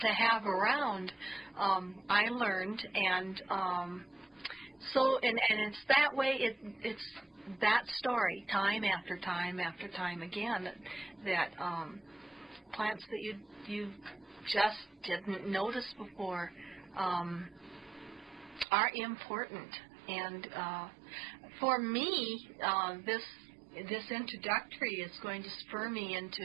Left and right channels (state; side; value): drops out; left; at 18.7 s